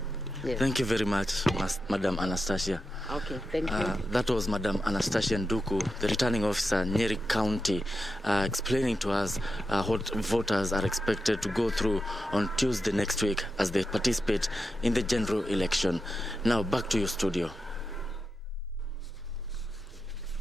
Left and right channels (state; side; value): normal; both; correlation 0.89